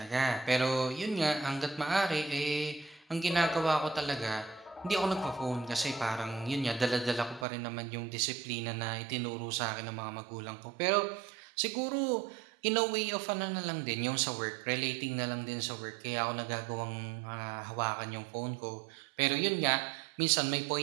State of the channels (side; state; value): left; drops out; at 7.5 s